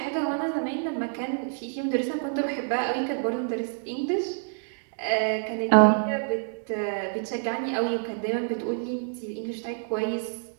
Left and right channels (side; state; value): left; silent; digital silence